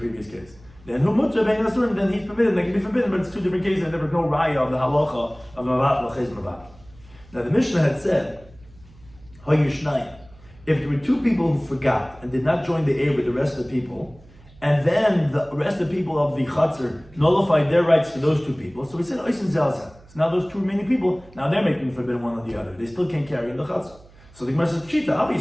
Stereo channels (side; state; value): right; noise; hum, 25 dB below the sound